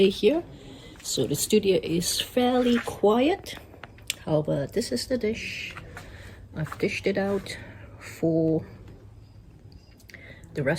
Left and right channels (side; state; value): both; identical; correlation 1.00